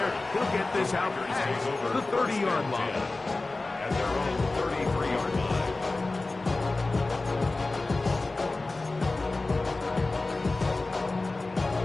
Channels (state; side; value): quieter; right; 3.3 dB